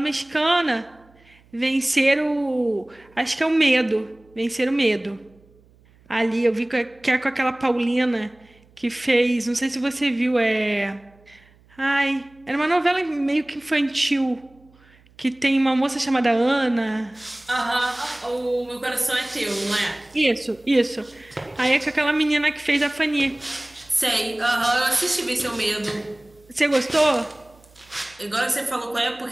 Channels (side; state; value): right; noise; hum, 30 dB below the sound